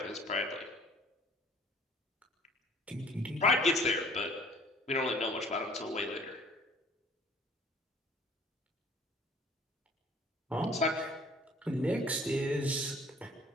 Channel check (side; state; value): both; normal; correlation 0.53